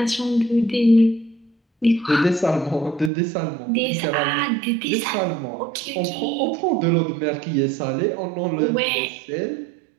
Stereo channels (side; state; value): left; drops out; at 3.1 s